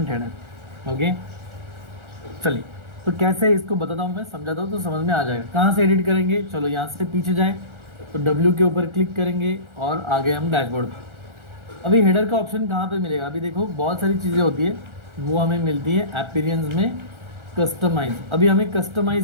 header. ओके, चलिए, तो कैसे इसको बताता हूँ मैं, समझाता हूँ तो समझ में आ जाएगा। कहाँ से एडिट करेंगे? चलो यहाँ से पीछे जाए, तो W के ऊपर क्लिक करेंगे और आ गए हम डैशबोर्ड पे। अभी हेडर का ऑप्शन कहाँ पे मिलेगा? अभी देखो बहुत सारी चीज़ें होती है, वो हमें मिलती है अपीयरेंस में, कस्टमाइज। अभी हमें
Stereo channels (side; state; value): left; late; 1.4 ms